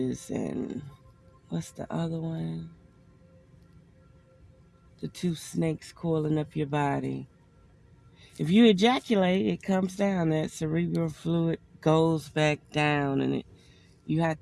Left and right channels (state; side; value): identical; both; correlation 1.00